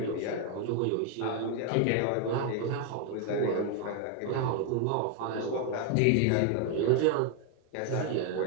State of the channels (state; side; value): different; both; correlation 0.01